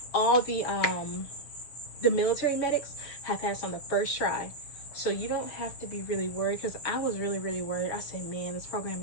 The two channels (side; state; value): right; late; 6.3 ms